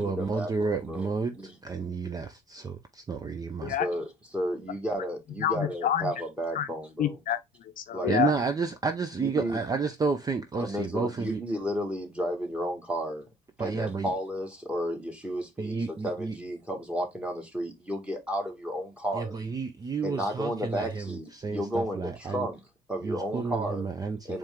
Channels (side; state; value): both; normal; correlation 0.60